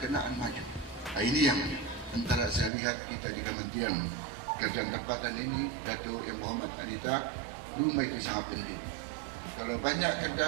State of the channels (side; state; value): left; drops out; at 2.7 s